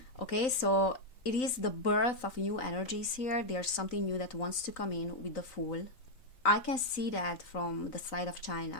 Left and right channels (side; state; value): right; late; 3.9 ms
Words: Okay, so it is the birth of new energies here. There's something new that wants to come in with the Fool. I can see that from the side of